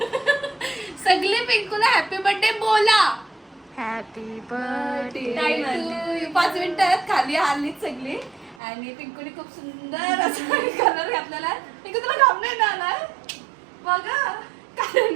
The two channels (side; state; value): left; drops out; at 8.6 s